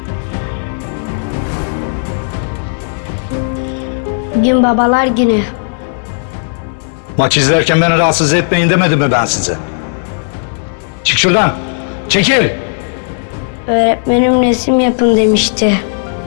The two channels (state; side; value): silent; right; digital silence